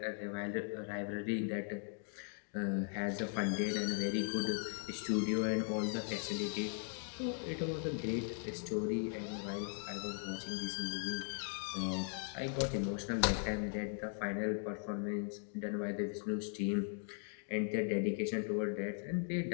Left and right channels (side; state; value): right; silent; 52 dB below the other